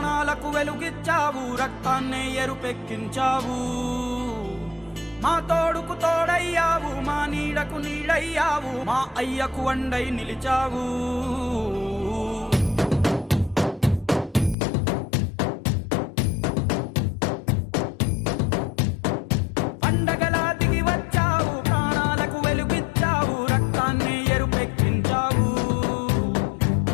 వెలుగిచ్చావు, రక్తాన్నే ఎరుపెక్కించావు. మా తోడుకు తోడయ్యావు, మా నీడకు నీడయ్యావు, మా అయ్యకు వండై నిలిచావు. పండగలా దిగి వచ్చావు, ప్రాణాలకు వెలుగిచ్చావు, రక్తాన్నే ఎరుపెక్కించావు.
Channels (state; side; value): drops out; right; at 14.6 s